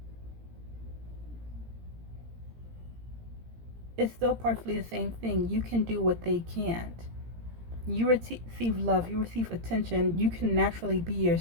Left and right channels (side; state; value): left; late; 17 ms